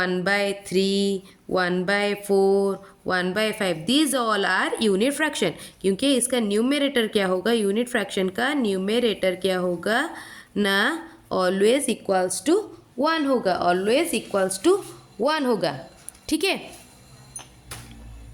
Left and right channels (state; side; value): identical; both; correlation 1.00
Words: 1/4, 1/5, these all are unit fraction. क्योंकि इसका न्यूमरेटर क्या होगा, यूनिट फ्रैक्शन का न्यूमरेटर क्या होगा ना, ऑलवेज इक्वल्स टू 1 होगा, ऑलवेज इक्वल्स टू 1 होगा। ठीक है,